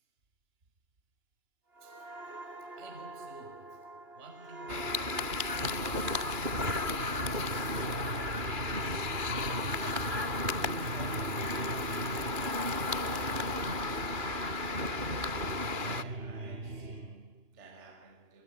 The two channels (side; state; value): left; late; 2.9 ms